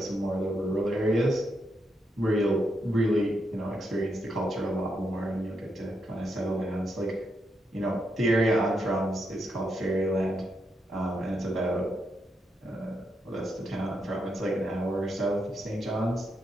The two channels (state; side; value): normal; both; correlation 0.81